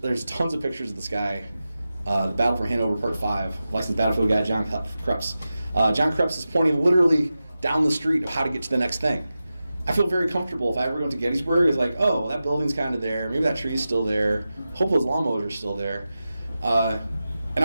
tons of pictures of this guy. The Battle for Hanover, Part 5, licensed battlefield guy John Krebs. John Krebs is pointing literally down the street of how to get to the next thing. I feel very comfortable if I ever go to Gettysburg. It's like, oh, that building's kind of there. Maybe that tree's still there. Hope those lawnmowers are still there. And I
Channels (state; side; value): inverted; both; correlation -0.93